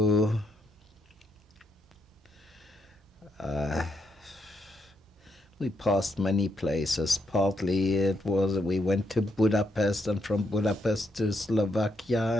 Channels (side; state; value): both; normal; correlation 0.80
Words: we passed many places. Partly we went to Budapest, and from Budapest to Slovakia,